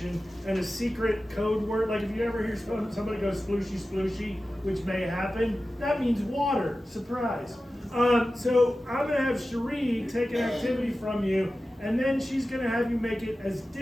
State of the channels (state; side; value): normal; both; correlation 0.94